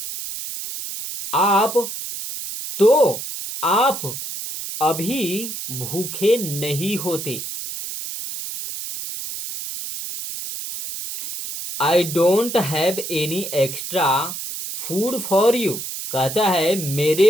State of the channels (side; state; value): right; noise; hiss, 7 dB below the sound